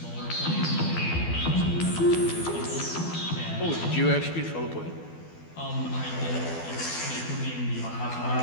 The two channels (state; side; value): late; right; 12 ms